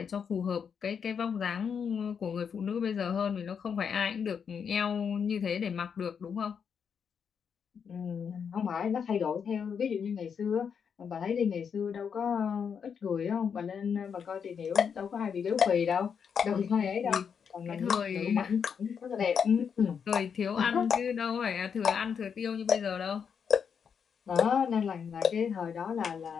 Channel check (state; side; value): quieter; right; 6.9 dB